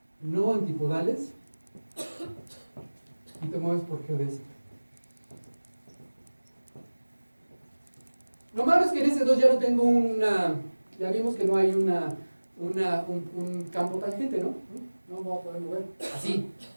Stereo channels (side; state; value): both; inverted; correlation -1.00